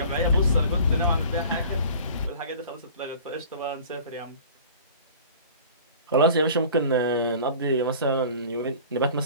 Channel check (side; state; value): both; inverted; correlation -0.44